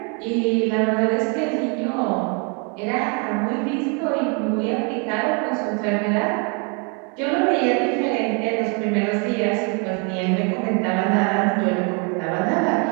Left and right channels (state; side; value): quieter; left; 35.0 dB